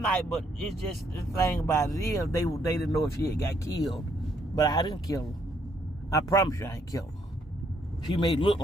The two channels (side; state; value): both; normal; correlation 0.70